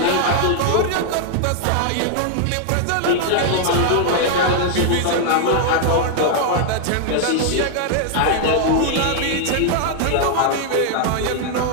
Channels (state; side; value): different; both; correlation 0.00